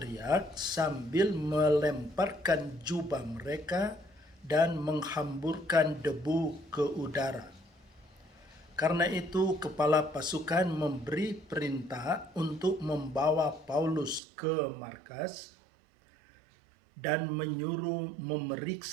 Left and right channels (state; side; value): drops out; left; at 14.2 s